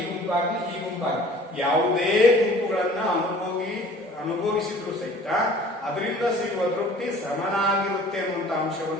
ಗುಂಪಾಗ್ಲಿ, ಇ ಗುಂಪಾಗ್ಲಿ ಯಾವುದೇ ಗುಂಪುಗಳನ್ನ ಅನುಭವಿಸಿದ್ರು ಸಹಿತ ಅದರಿಂದ ಸಿಗುವ ತೃಪ್ತಿ ಸಮನಾಗಿರುತ್ತೆ ಅನ್ನುವಂತ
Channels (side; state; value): both; normal; correlation 0.49